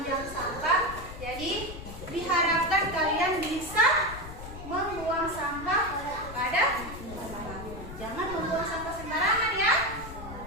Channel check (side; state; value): left; noise; rumble, 12 dB below the sound